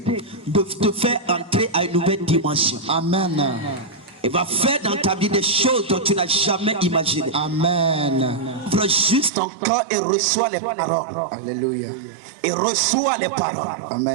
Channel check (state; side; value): drops out; left; at 9.3 s